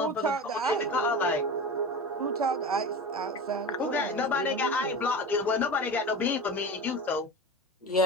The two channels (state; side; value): normal; both; correlation 0.30